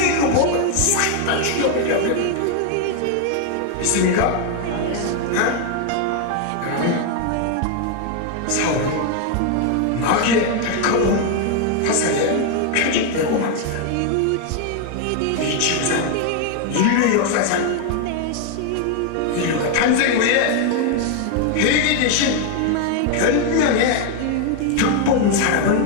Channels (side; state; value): both; different; correlation 0.01